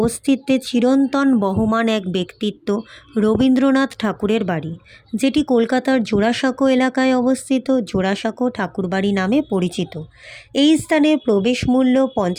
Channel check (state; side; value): identical; both; correlation 1.00